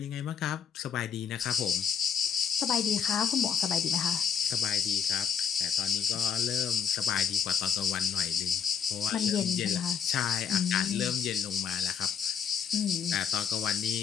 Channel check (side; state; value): right; quieter; 7.4 dB